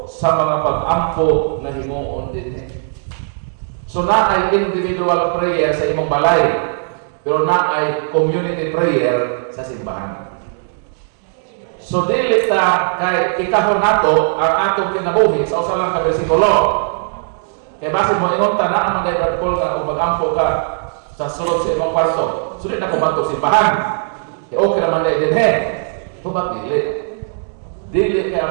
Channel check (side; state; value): left; silent; digital silence